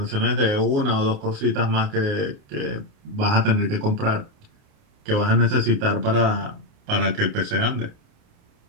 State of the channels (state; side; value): late; left; 28 ms